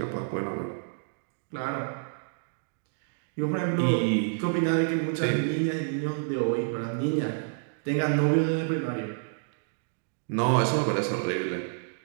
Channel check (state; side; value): silent; left; digital silence